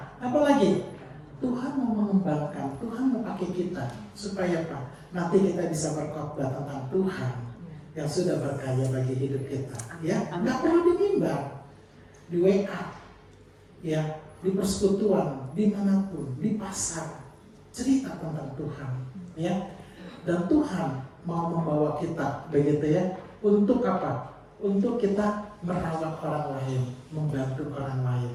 apalagi Tuhan mau mengembangkan, Tuhan mau pakai kita supaya apa? Nanti kita bisa berkhotbah tentang Tuhan yang sudah berkarya bagi hidup kita. Ya, nggak perlu di mimbar, di WA, ya, di persekutuan, dimanapun, di pasar, cerita tentang Tuhan, ya. Dan Tuhan mau membawa kita, begitu ya, untuk apa? Untuk kita merawat orang lain, membantu orang lain,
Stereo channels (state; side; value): identical; both; correlation 1.00